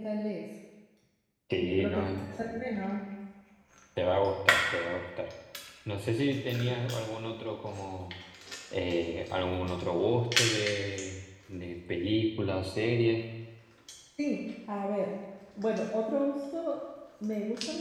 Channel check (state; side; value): identical; both; correlation 1.00